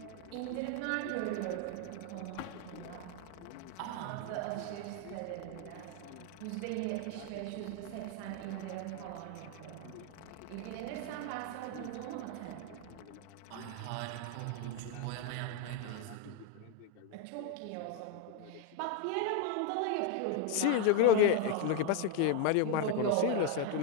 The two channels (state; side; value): different; both; correlation 0.01